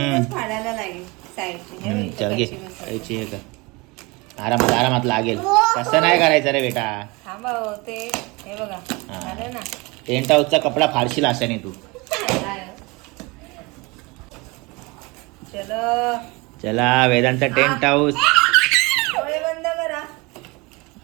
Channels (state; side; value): quieter; left; 25.6 dB